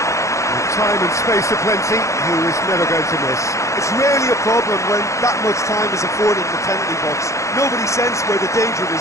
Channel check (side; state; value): right; late; 0.15 ms